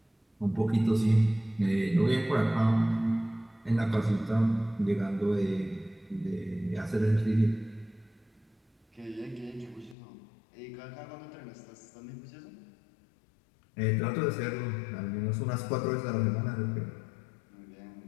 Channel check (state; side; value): drops out; right; at 10.0 s